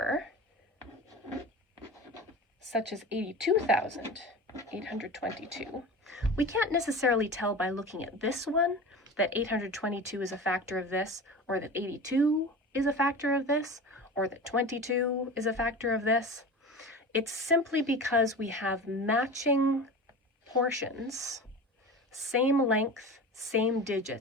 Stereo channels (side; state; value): both; normal; correlation 0.32